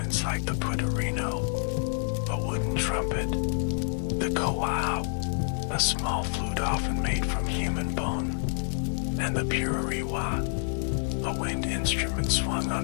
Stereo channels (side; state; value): right; silent; 59 dB below the other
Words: like the putarino, a wooden trumpet, the kowao, a small flute often made from human bone, and the purariwa, a wind instrument swung